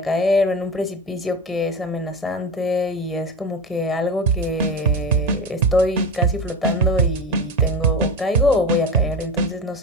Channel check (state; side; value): normal; both; correlation 0.23